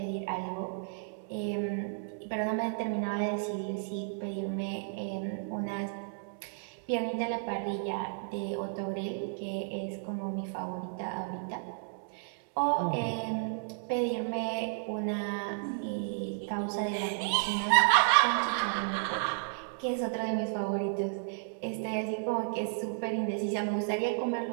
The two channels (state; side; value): silent; left; digital silence